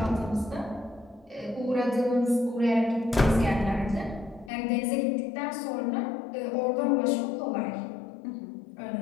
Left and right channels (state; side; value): drops out; right; at 4.5 s